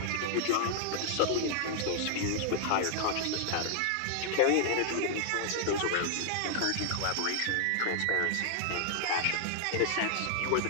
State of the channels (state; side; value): different; both; correlation 0.00